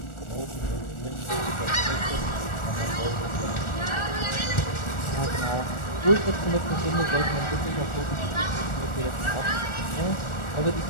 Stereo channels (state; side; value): late; right; 1.4 ms